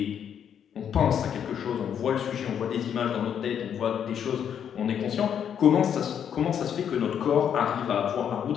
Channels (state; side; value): quieter; right; 8.6 dB